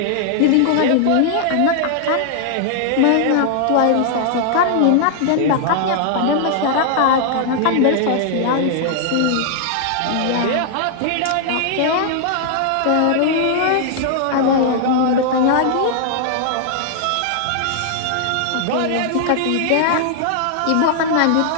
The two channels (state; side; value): different; both; correlation -0.01